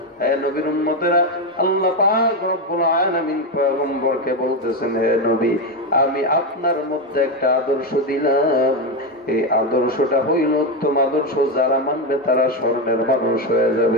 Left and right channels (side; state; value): both; normal; correlation 0.10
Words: হে নবীর উম্মতেরা, আল্লাহ পাক রব্বুল আলামিন পয়গম্বরকে বলতেছেন, হে নবী, আমি আপনার মধ্যে একটা আদর্শ দিলাম, এই আদর্শটা হইল উত্তম আদর্শ, যারা মানবে তারা স্বর্ণের মানুষ হয়ে